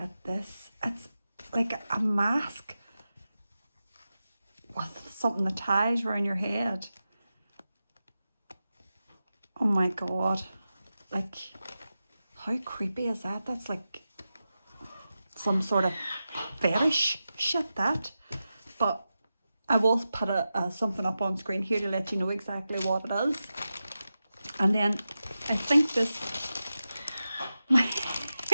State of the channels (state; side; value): inverted; both; correlation -0.92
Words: this. It's like a mask with something that ties around your head. Oh my God. Like, how creepy is that? That's like some sort of fetish shit, that. But I will put something up on screen here to let you know exactly what it is. And then I think this